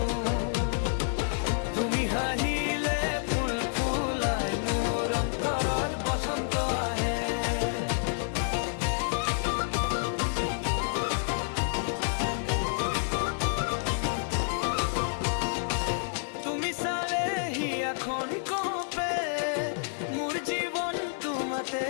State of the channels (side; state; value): right; silent; digital silence